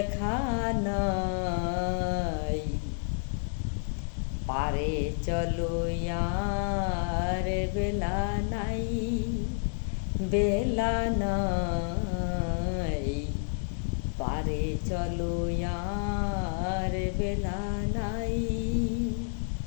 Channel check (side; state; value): right; silent; digital silence